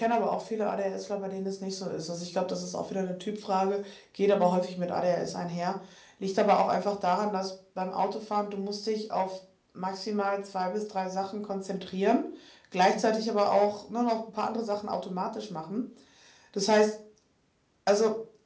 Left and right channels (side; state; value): both; identical; correlation 1.00